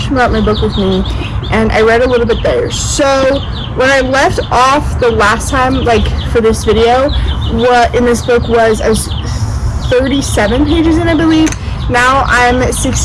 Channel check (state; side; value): identical; both; correlation 1.00